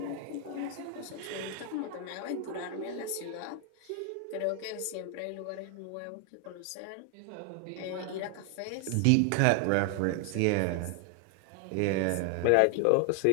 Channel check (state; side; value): different; both; correlation 0.00